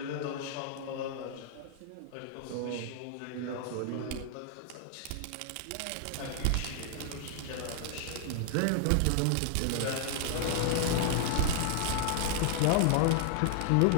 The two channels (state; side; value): different; both; correlation 0.00